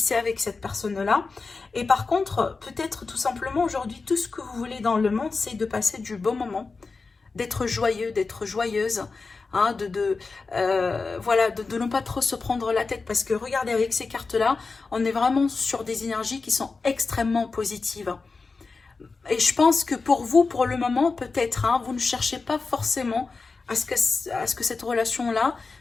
avec cette personne-là. Et par contre, peut-être tout simplement aujourd'hui, tout ce que vous voulez dans le monde, c'est de passer du bon moment, d'être joyeux, d'être joyeuse, voilà, de ne pas trop se prendre la tête. Parce que regardez, avec ces cartes-là, on est vraiment sur des énergies qui sont extrêmement positives. Et je pense que pour vous, pour le moment, peut-être, vous ne cherchez pas forcément à ce que cette relation-là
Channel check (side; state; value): right; quieter; 4.2 dB